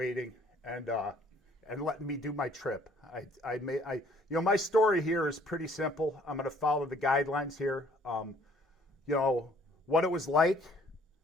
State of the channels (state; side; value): normal; both; correlation 0.59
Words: and letting me do my trip. My story here is pretty simple. I'm going to follow the guidelines here. What it was like